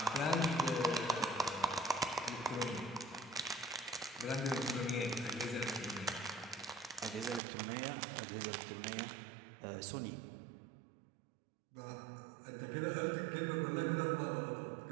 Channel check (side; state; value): left; drops out; at 7.4 s